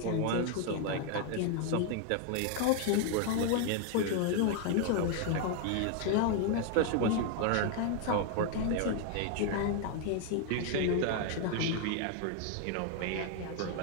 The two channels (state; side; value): different; both; correlation 0.00